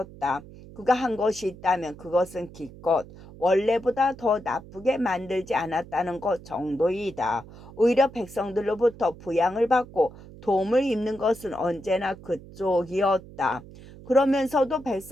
그가 한 것이 있다면 그것은 기껏 원래보다 더 나쁘게 만들지 않았다는 것 정도이다. 오히려 백성들로부터 부양을 받고 도움을 입는 것은 언제나 그쪽이었다. 그러면서도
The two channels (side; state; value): right; noise; hum, 18 dB below the sound